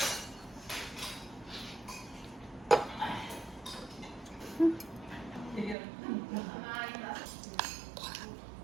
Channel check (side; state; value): left; drops out; at 5.8 s